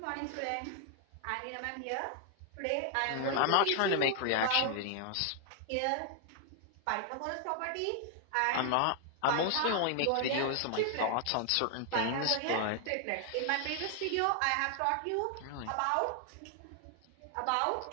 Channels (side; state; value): both; different; correlation 0.00